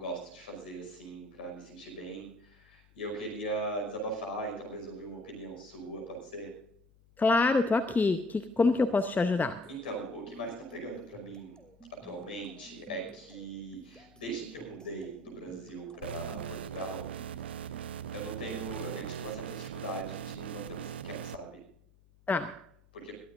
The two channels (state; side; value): noise; left; hum, 28 dB below the sound